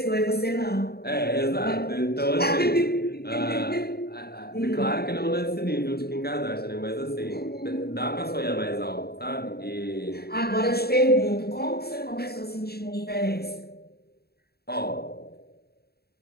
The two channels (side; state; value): right; late; 0.46 ms